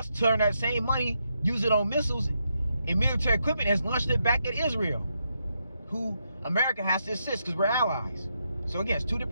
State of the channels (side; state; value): both; inverted; correlation -0.81